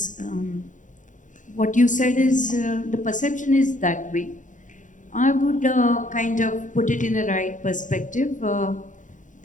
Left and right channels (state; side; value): late; right; 0.37 ms